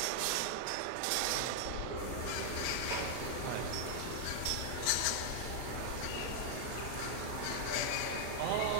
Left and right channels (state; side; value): different; both; correlation -0.01